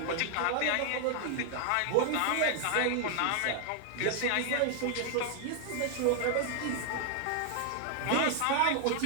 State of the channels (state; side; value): different; both; correlation 0.00